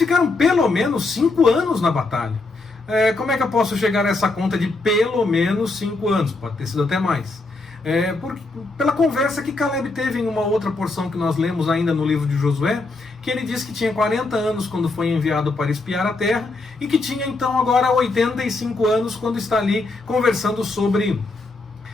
pelo menos 5 anos na batalha. Como é que eu posso chegar a essa conta de pelo menos 5 anos? Pode ter sido até mais. Pela conversa que Caleb teve em uma outra porção que nós lemos ainda no livro de Josué, que ele disse que tinha 40 anos quando foi enviado para espiar a terra, e que tinha então agora 85 anos quando está ali conversando sobre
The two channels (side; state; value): right; quieter; 3.4 dB